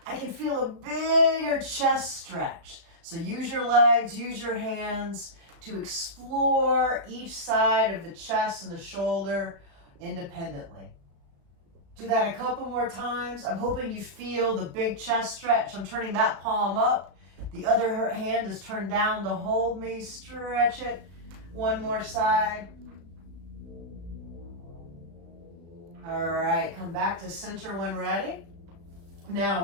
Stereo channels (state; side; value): late; left; 35 ms